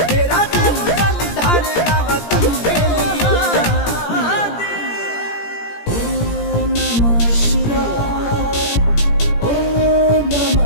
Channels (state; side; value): late; right; 17 ms